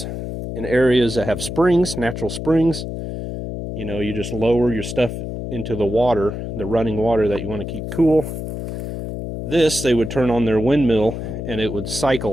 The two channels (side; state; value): left; noise; hum, 6 dB below the sound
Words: in areas that have springs, natural springs, you know, you just lower your stuff into the water, the running water that you want to keep cool. This, they would turn on their windmill and it would